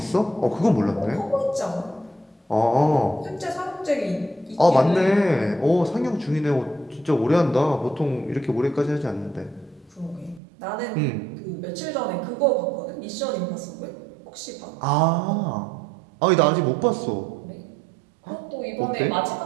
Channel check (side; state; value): left; drops out; at 10.4 s